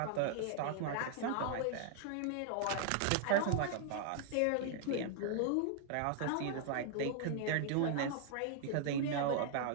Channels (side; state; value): both; different; correlation -0.01